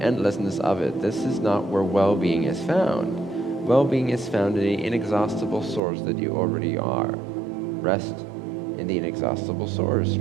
of it. This is not where well-being is found. Well-being is found in the inexhaustible source that you already are. Rest in the inexhaustible source.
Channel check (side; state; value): left; drops out; at 5.8 s